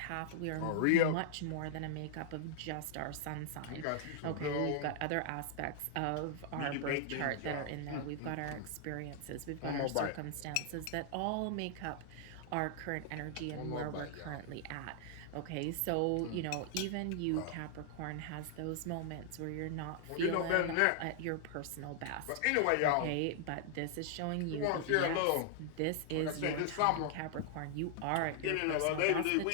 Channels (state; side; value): different; both; correlation -0.01